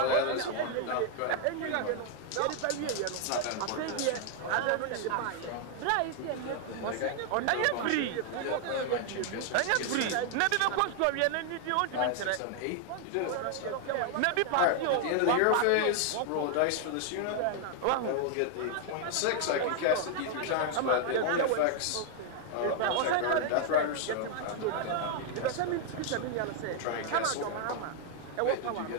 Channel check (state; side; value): different; both; correlation 0.00